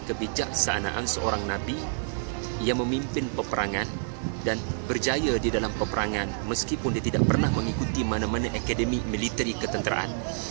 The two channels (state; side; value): silent; left; 56 dB below the other